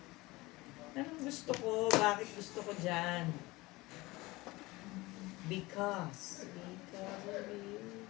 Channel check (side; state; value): right; quieter; 21.3 dB